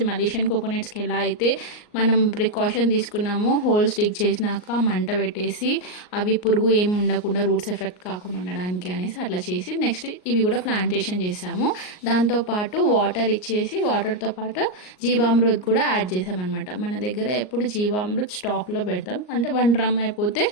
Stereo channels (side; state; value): right; late; 38 ms